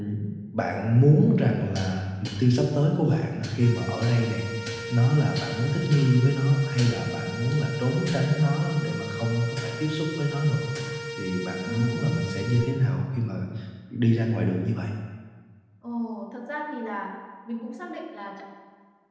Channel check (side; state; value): both; identical; correlation 1.00